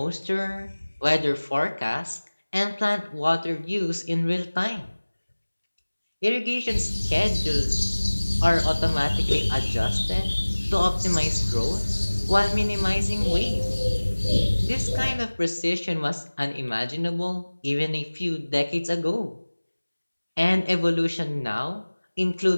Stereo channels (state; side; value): inverted; both; correlation -1.00